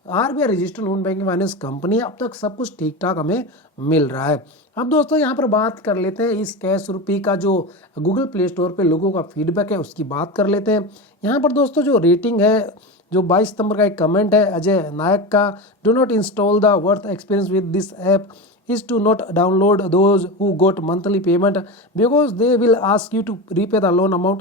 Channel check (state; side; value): normal; both; correlation 0.22